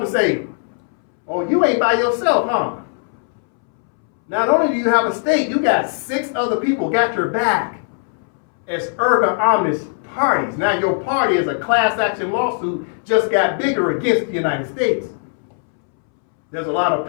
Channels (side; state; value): right; silent; 66 dB below the other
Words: and say, oh, you ain't by yourself, huh? Not only do you have a state, you got 6 other people got your back as erga omnes parties. Now your party is a class action lawsuit just got bigger against the United States. There's a lot of